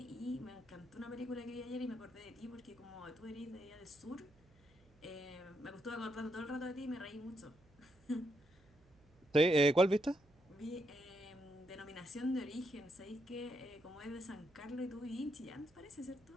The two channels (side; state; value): right; noise; hum, 29 dB below the sound